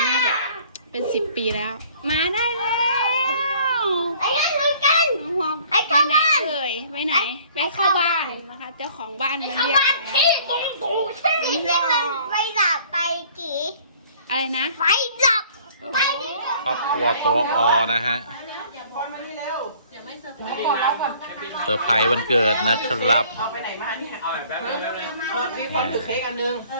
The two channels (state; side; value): inverted; both; correlation -0.54